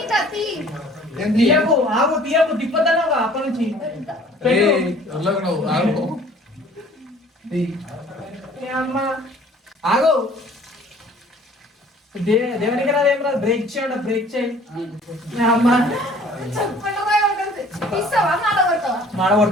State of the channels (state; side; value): normal; both; correlation 0.52